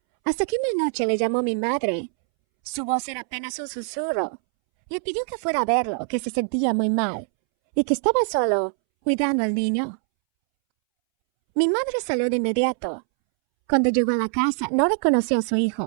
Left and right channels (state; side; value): silent; left; 63 dB below the other